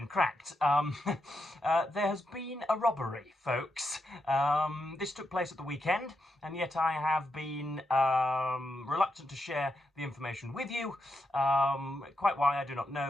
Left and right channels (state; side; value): normal; both; correlation 0.84